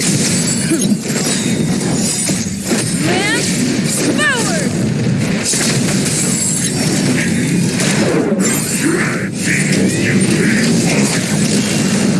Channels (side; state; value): both; identical; correlation 1.00